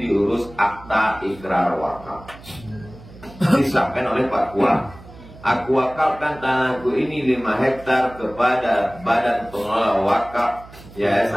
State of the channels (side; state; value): right; noise; hum, 19 dB below the sound